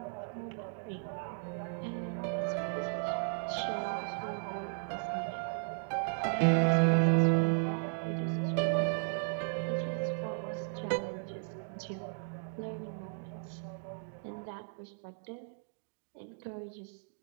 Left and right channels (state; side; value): silent; left; digital silence